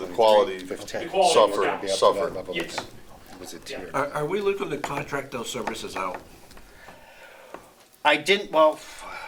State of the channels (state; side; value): identical; both; correlation 1.00